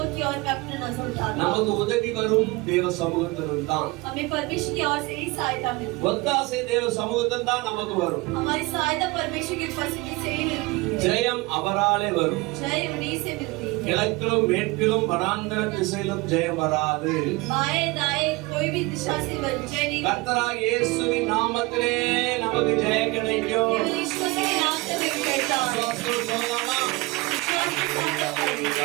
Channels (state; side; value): quieter; left; 23.4 dB